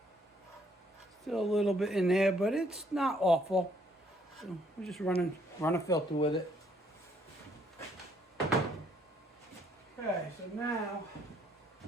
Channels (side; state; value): both; normal; correlation 0.67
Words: Still a little bit in there, but it's not awful. So we're just run a filter with it. Okay, so now